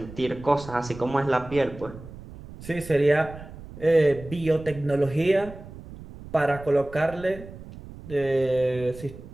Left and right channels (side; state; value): right; noise; rumble, 15 dB below the sound